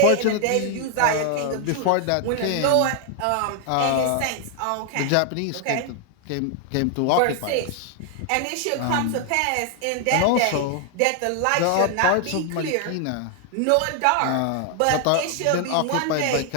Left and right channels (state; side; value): different; both; correlation 0.00